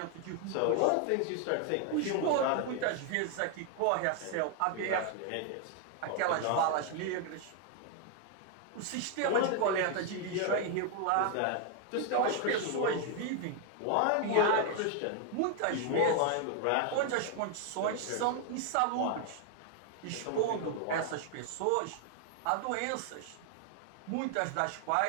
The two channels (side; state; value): both; different; correlation 0.00